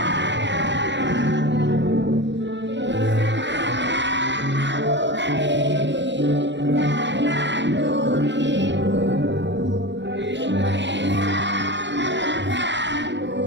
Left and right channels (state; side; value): late; left; 0.53 ms